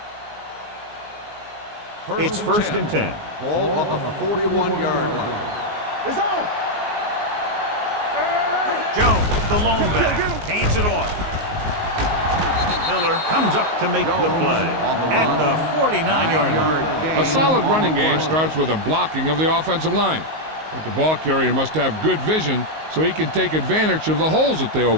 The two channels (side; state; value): left; late; 19 ms